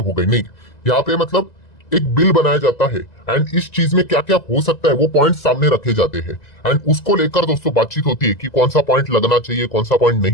गई। नहीं, यहाँ पे मतलब एक बिल बनाया जाता है एंड इस चीज में क्या क्या हो सकता है वो पॉइंट सामने रखे जाते हैं एंड उसको लेकर दोस्तों बातचीत होती है कि कौन सा पॉइंट लगना चाहिए, कौन सा पॉइंट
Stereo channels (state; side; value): late; right; 2.0 ms